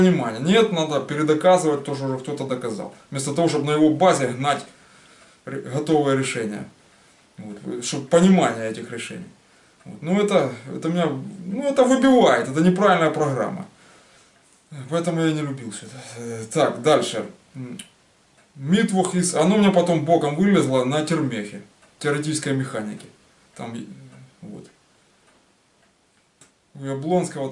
Нет, надо передоказывать, тоже уже кто-то доказал. Вместо того, чтобы на его базе гнать готовое решение. Вот, чтобы понимание этих решений. Вот. Ну, это меня, ну, это выбивает, это неправильная программа. Поэтому я не любил все это. Так, дальше. Митвух из... Оно у меня потом боком вылезло на термехе. Теоретической механике. Там, вот. У Яблонского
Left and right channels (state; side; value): identical; both; correlation 1.00